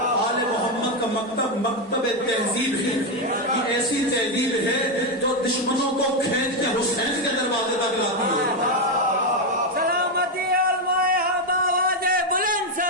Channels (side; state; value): both; normal; correlation 0.07